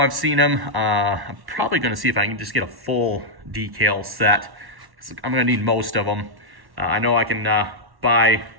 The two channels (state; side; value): late; left; 1.1 ms